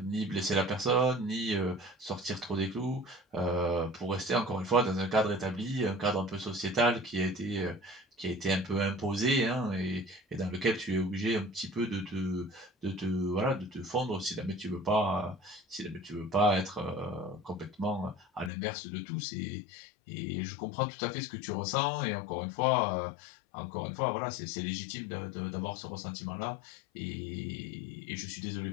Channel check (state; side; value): drops out; right; at 18.5 s